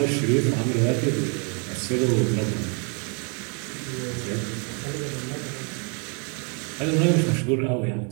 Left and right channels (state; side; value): quieter; left; 37.2 dB